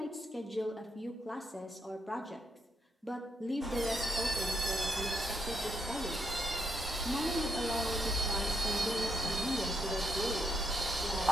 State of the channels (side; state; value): both; normal; correlation 0.78